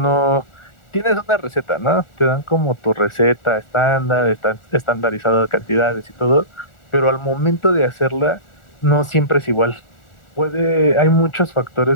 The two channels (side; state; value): right; late; 1.4 ms